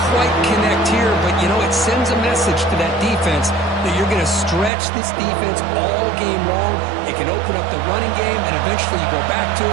quite connect here, but, you know, it sends a message to that defense that you're going to stretch this defense all game long. It can open up the running game, and eventually you go back to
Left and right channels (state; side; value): drops out; left; at 4.7 s